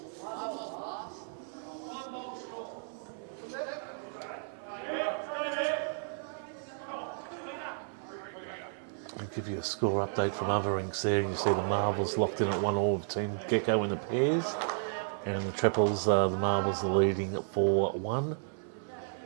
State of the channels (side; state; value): left; silent; 56 dB below the other